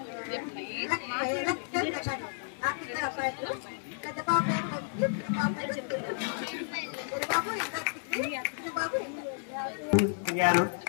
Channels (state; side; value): silent; right; 57 dB below the other